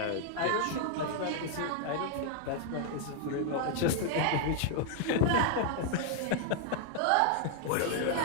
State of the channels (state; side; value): different; both; correlation 0.00